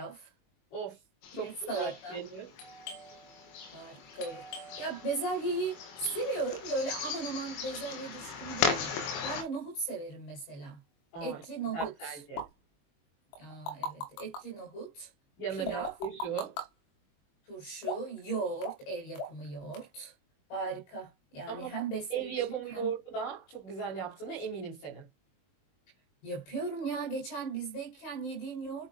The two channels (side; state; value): right; late; 21 ms